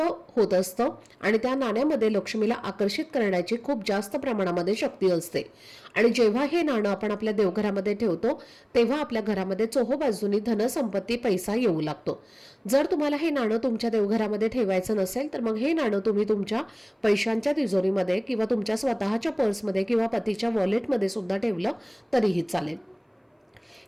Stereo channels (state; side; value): identical; both; correlation 1.00